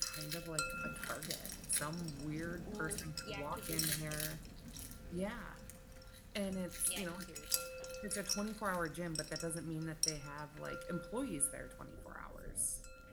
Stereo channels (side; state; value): both; identical; correlation 1.00